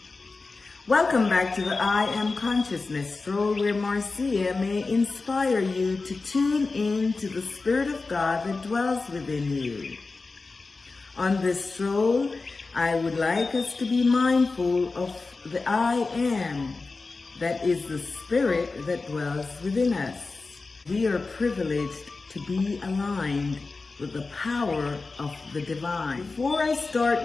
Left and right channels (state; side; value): quieter; right; 3.9 dB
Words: Welcome back to the I Am Consciousness Stroll, where Marcia may inspire you to tune in to the Spirit of God that dwells within you. On this stroll, I would like us to be mindful of the I Am, that is the Spirit that dwells within us. We are privileged to be aligned with the power of the divine. Before I start